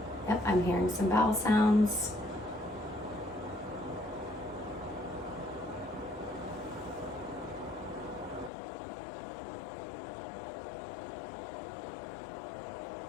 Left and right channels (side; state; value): right; drops out; at 8.5 s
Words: Yep, I'm hearing some bowel sounds.